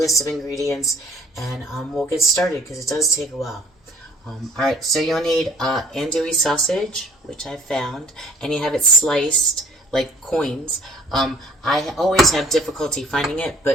of ingredients, and we'll get started because it does take a while. Alright, so you'll need andouille sausage, which I found, and you have it sliced like coins. I always have difficulty finding it,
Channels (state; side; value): normal; both; correlation 0.55